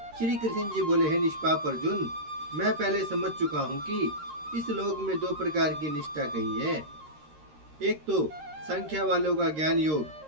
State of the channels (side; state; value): left; late; 13 ms